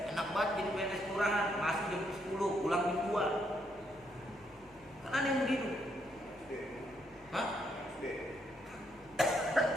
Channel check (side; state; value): left; noise; hum, 27 dB below the sound